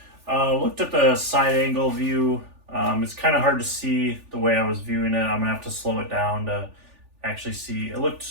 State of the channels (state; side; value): late; left; 3.4 ms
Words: Looked at the side angle view. It's kind of hard to see the way I was viewing it. I'm gonna have to slow it down to actually see. It